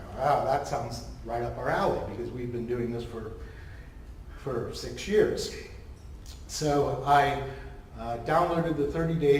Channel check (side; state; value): both; identical; correlation 1.00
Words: wow, that sounds right up our alley, because we've been doing this for 6 years. So I downloaded the